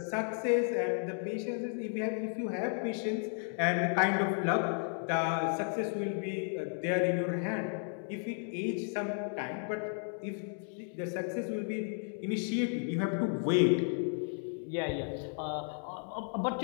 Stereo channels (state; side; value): silent; right; 55 dB below the other